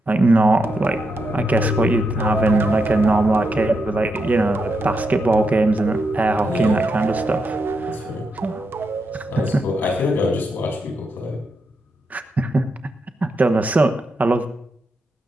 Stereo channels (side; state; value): both; normal; correlation 0.84